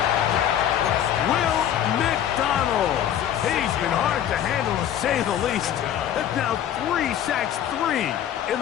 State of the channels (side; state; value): right; quieter; 10.4 dB